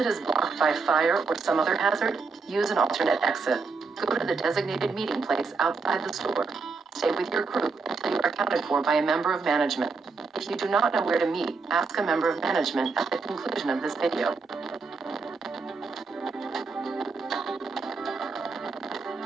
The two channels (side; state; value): left; quieter; 4.5 dB